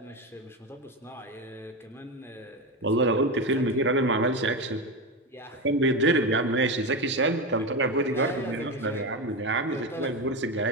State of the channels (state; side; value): normal; both; correlation 0.16